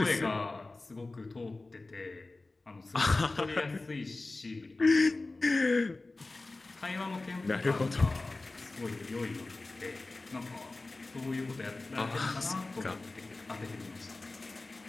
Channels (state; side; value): quieter; right; 3.2 dB